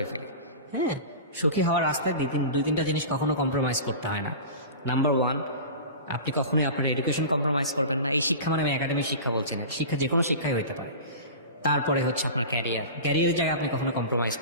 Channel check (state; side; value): inverted; both; correlation -0.33